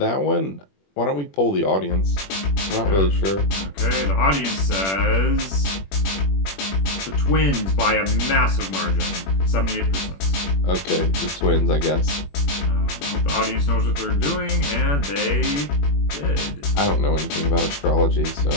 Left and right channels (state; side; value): late; right; 21 ms